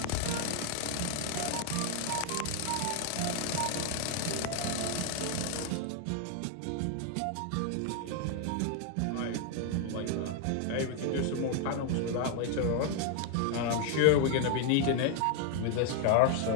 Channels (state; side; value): different; both; correlation 0.00